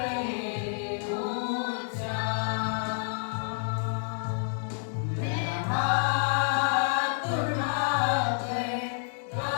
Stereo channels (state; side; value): silent; right; digital silence